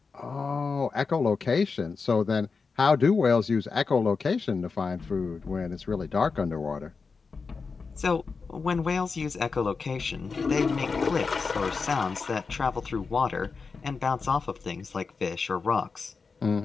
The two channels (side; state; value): right; quieter; 4.8 dB